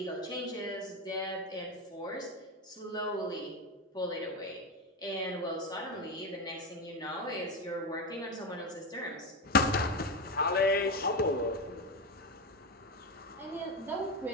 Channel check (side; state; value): both; normal; correlation 0.15